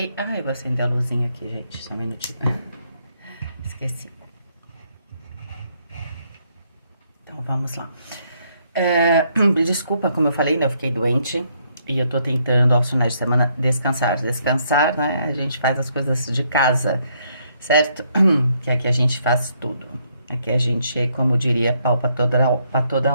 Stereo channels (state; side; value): inverted; both; correlation -0.72